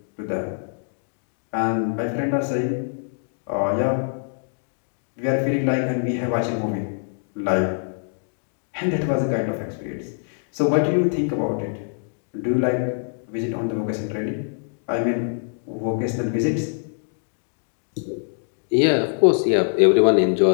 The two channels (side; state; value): right; silent; digital silence